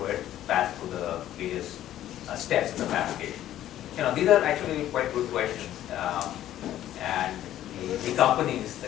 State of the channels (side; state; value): right; quieter; 12.6 dB